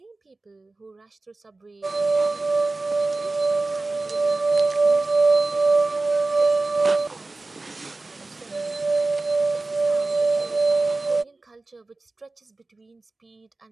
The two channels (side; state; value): left; quieter; 3.3 dB